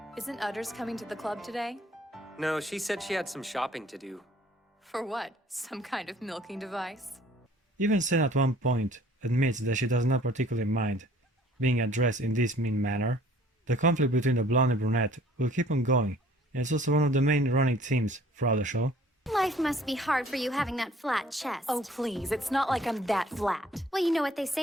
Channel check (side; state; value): both; normal; correlation 0.55